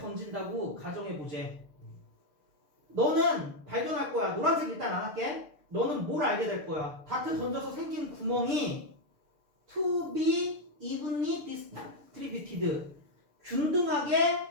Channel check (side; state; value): left; late; 6.7 ms